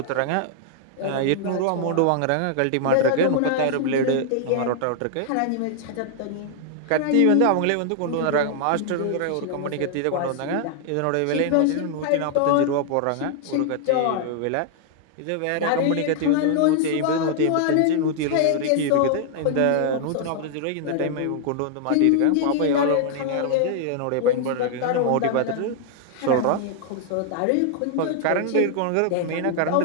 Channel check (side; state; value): both; different; correlation 0.00